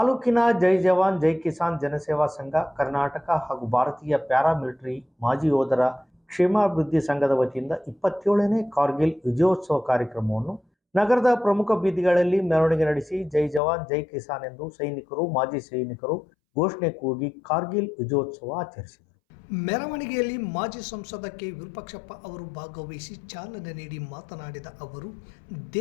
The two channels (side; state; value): right; drops out; at 13.6 s